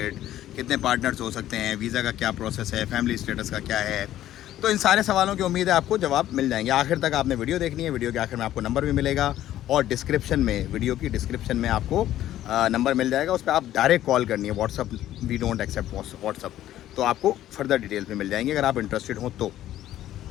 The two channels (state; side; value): quieter; right; 12.9 dB